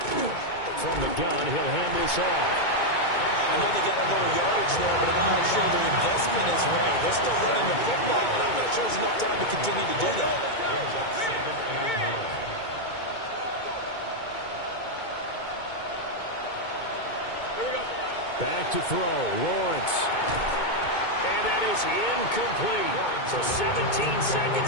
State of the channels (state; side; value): late; right; 2.2 ms